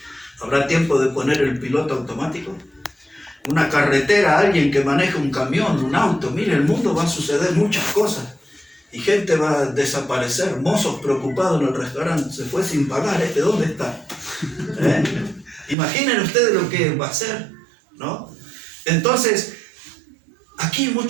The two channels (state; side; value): drops out; left; at 15.8 s